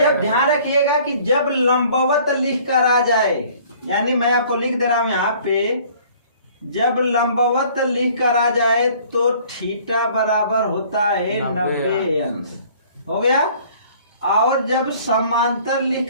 ध्यान रखिएगा कि जब लंबवत लिख कर आ जाए, यानी मैं आपको लिख दे रहा हूं यहाँ पे, जब लंबवत लिख कर आ जाए तो थीटा बराबर होता है 90 अंश। हो गया। और जब समांतर लिख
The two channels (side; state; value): both; inverted; correlation -0.54